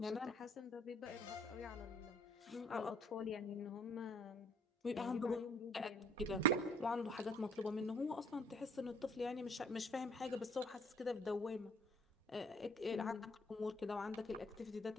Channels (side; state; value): both; normal; correlation 0.60